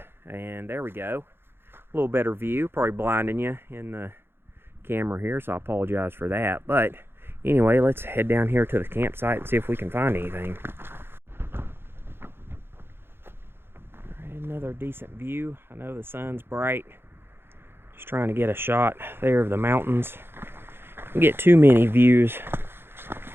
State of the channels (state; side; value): late; left; 0.11 ms